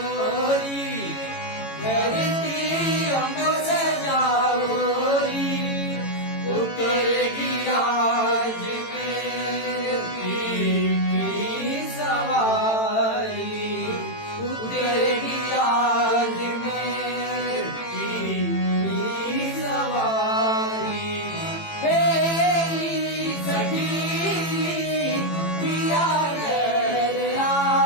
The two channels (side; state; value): right; late; 18 ms